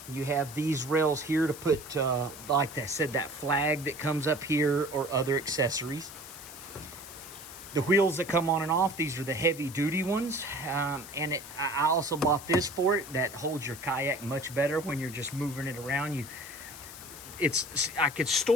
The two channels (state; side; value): noise; left; hiss, 15 dB below the sound